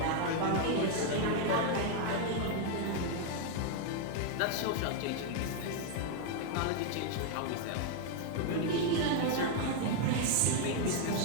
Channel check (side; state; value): both; different; correlation 0.00